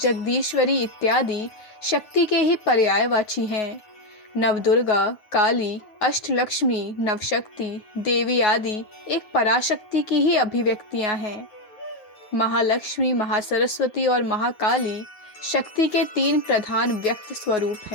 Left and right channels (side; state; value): right; late; 9.4 ms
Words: इत्यादि शक्ति के ही पर्यायवाची हैं। नवदुर्गा, काली, अष्टलक्ष्मी, नवशक्ति, देवी आदि एक पराशक्ति की ही अभिव्यक्तियां हैं। महालक्ष्मी, महासरस्वती और महाकाली शक्ति के तीन प्रधान व्यक्त स्वरूप